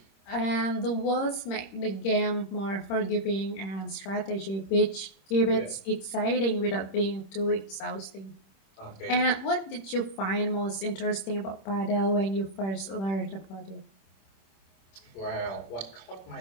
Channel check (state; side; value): late; right; 26 ms